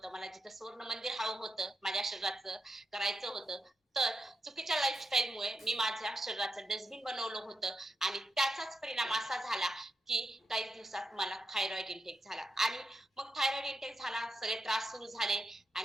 मला जिथं स्वर्ण मंदिर हवं होतं, माझ्या शरीराचं करायचं होतं, तर चुकीच्या लाईफस्टाईलमुळे मी माझ्या शरीराचं डस्टबिन बनवलं होतं. आणि त्याचाच परिणाम असा झाला की काही दिवसात मला थायरॉइड इंटेक झाला. आणि मग थायरॉइड इंटेक झाला, सगळे त्रास सुरू झाले.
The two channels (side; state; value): both; normal; correlation 0.85